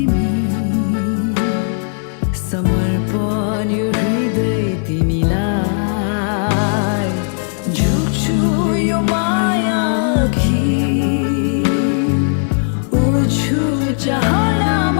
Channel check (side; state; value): right; silent; 62 dB below the other